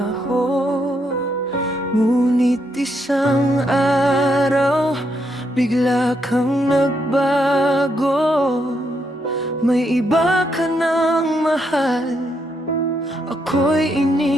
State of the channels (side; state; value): both; normal; correlation 0.78